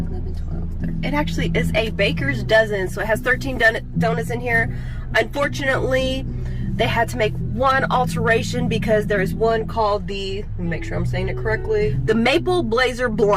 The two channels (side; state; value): both; identical; correlation 1.00